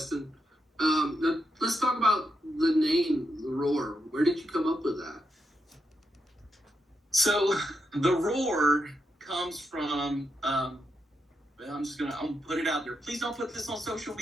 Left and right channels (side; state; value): both; normal; correlation 0.84